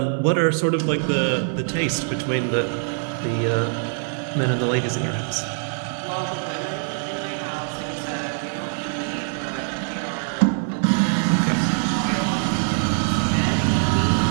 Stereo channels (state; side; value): silent; left; 58 dB below the other